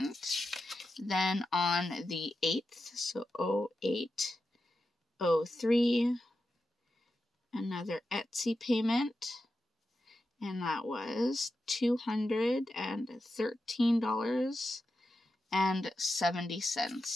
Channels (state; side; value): normal; both; correlation 0.90